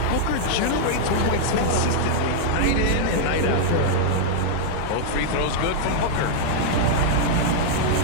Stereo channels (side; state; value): both; different; correlation -0.01